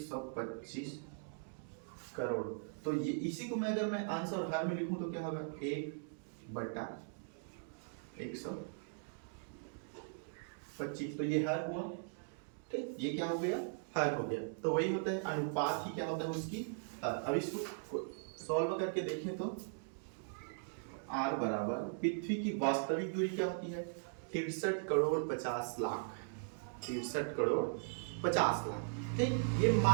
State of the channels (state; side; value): silent; left; digital silence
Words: करोड़। तो ये इसी को मैं अगर मैं अंश और हर में लिखूं तो क्या होगा, 1/125, तो ये हर हुआ। ठीक, ये क्या हो गया, हर हो गया। तो वही होता है अनुपात ही क्या होता है उसकी हर। अब इसको सॉल्व करके देखें तो r बराबर पृथ्वी की वास्तविक दूरी क्या होती है, 63 करोड़ 50 लाख, 63 करोड़ 50 लाख। ठीक, ये